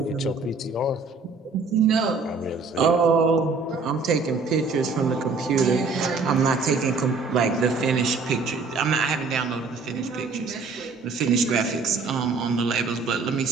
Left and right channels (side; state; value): left; quieter; 4.3 dB